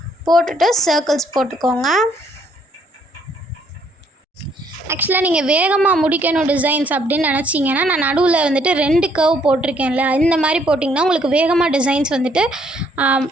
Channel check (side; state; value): both; normal; correlation 0.67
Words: போட்டுட்டு சர்க்கிள்ஸ் போட்டுக்கோங்க. ஆக்சுவலாக நீங்கள் வேகமாக முடிக்கணும் டிசைன்ஸ் அப்படின்னு நினச்சிங்கன்னா, நான் நடுவில் வந்துட்டு 2 கர்வ் போட்டிருக்கேன்ல, இந்த மாதிரி போட்டிங்கன்னா உங்களுக்கு வேகமாக டிசைன்ஸ் வந்துட்டு